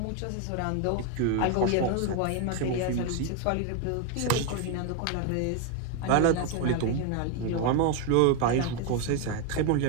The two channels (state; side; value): different; both; correlation 0.01